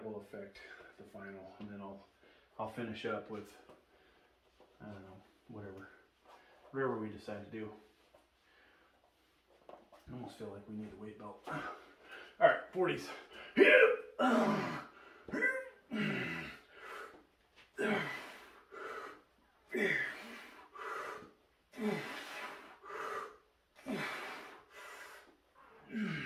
will affect the final, and then I'll finish up with, I don't know, whatever we decide to do. I almost feel like we need a weight belt. All right, 40s.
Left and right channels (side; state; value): both; identical; correlation 1.00